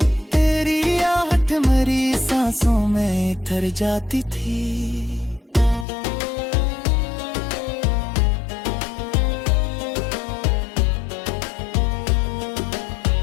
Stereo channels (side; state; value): right; drops out; at 5.9 s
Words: तेरी आहट मेरी सांसों में तर जाती थी।